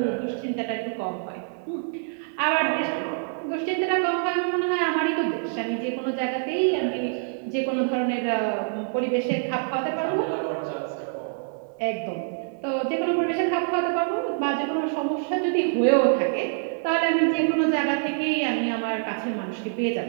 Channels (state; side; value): silent; left; 61 dB below the other